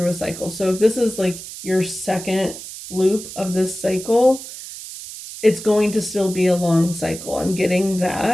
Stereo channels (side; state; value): right; noise; hiss, 12 dB below the sound